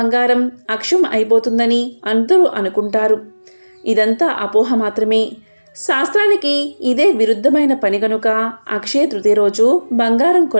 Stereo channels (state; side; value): inverted; both; correlation -1.00